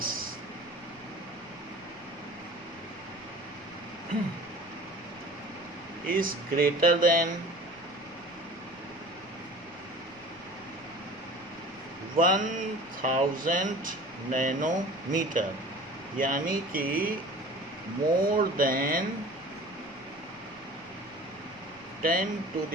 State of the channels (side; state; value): left; noise; rumble, 25 dB below the sound